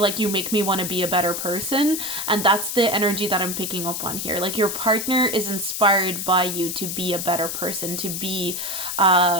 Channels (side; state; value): left; noise; hiss, 4 dB below the sound